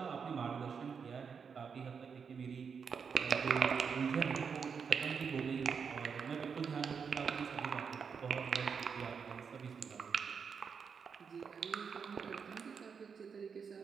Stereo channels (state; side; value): quieter; left; 6.2 dB